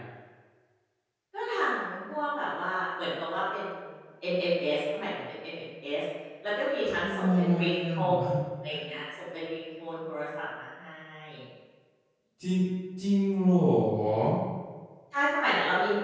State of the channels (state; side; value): identical; both; correlation 1.00